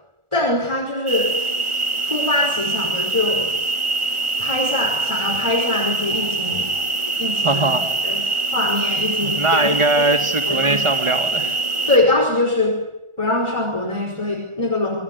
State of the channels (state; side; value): late; left; 1.4 ms